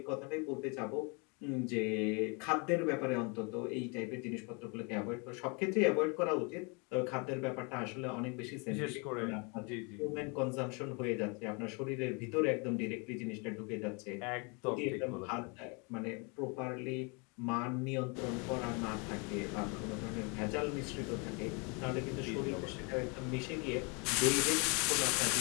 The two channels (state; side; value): quieter; right; 32.4 dB